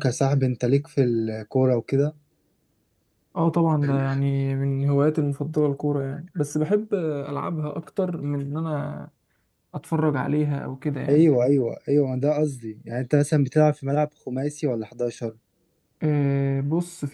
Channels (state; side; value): identical; both; correlation 1.00